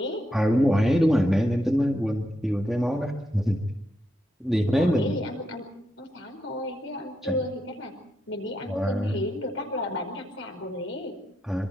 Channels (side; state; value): both; normal; correlation 0.82